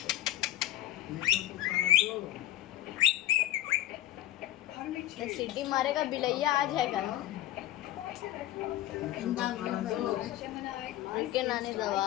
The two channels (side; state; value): right; quieter; 14.1 dB